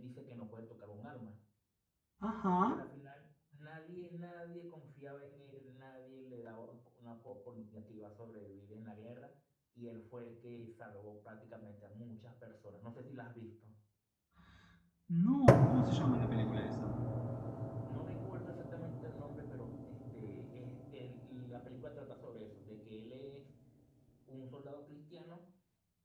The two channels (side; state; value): both; identical; correlation 1.00